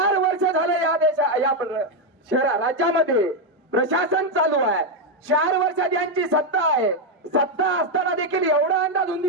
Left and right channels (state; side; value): normal; both; correlation 0.04